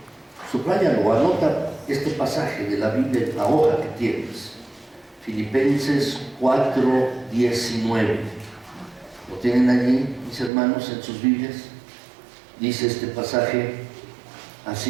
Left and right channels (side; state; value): left; drops out; at 10.5 s